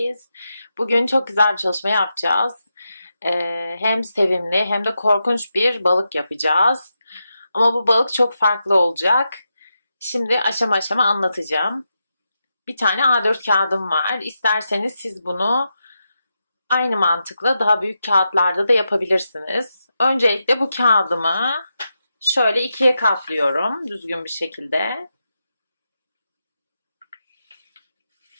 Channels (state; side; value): inverted; both; correlation -0.87